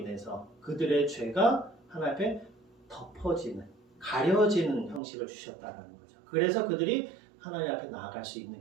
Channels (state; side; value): drops out; left; at 5.0 s